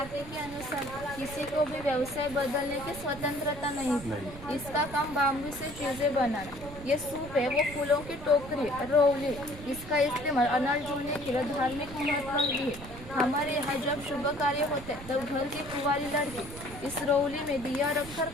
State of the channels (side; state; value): right; noise; rumble, 14 dB below the sound